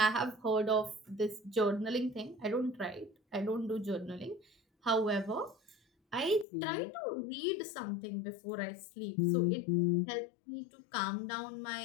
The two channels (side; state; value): right; drops out; at 6.5 s